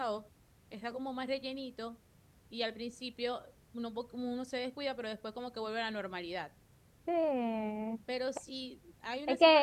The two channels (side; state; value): both; identical; correlation 1.00